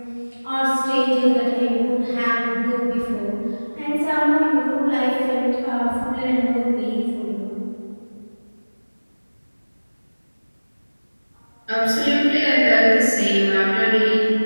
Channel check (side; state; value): both; inverted; correlation -1.00